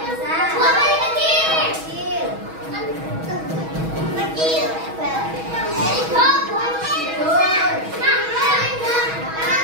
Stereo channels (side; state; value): left; late; 6.2 ms